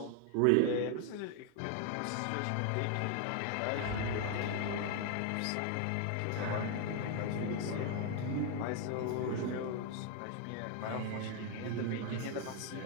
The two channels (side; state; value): both; different; correlation 0.01